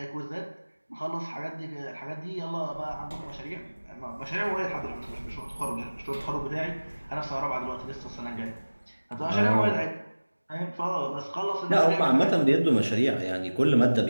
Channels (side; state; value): both; inverted; correlation -1.00